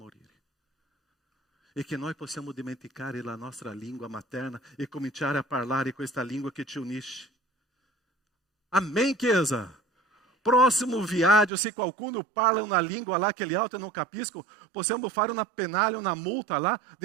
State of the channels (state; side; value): drops out; left; at 11.5 s